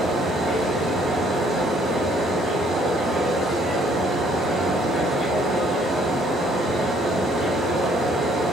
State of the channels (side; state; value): both; normal; correlation 0.63